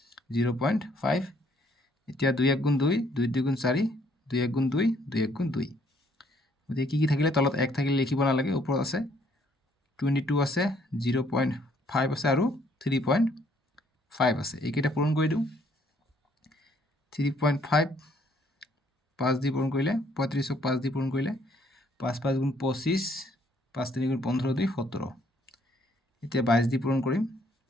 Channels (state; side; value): normal; both; correlation 0.65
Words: 0.5। এতিয়া 2 1 × 2 2 2 × 4 2 1 × 2 2 1 × 2, গতিকে কি থাকিলে তলত 1 থাকিলে লিখিব নালাগে, ওপৰত আছে 22 আছে 0.5 আছে আৰু 3.5 আছে, এইকেইটা পূৰণ কৰি দিওঁ। 3.5 5 দি পূৰণ কৰিলে 35ক 5 দি পূৰণ কৰিলে 5 5 × 25 5 3 × 15 2 17। এতিয়া 22 দি পূৰণ কৰিম,